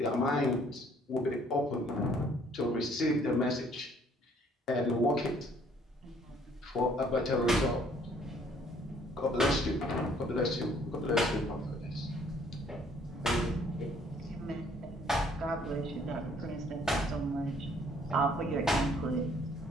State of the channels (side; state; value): both; normal; correlation 0.61